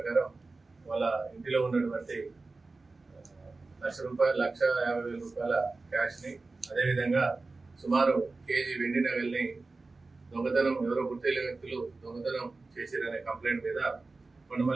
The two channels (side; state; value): left; quieter; 3.6 dB